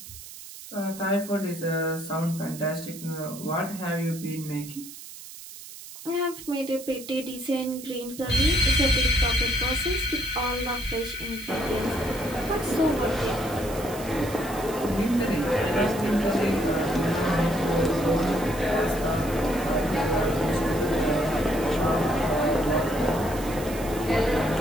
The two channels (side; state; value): right; noise; hiss, 14 dB below the sound